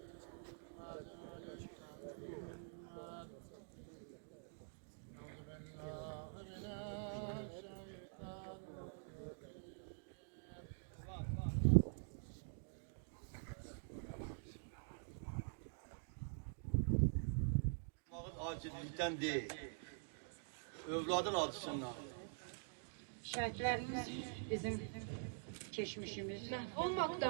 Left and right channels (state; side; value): silent; left; digital silence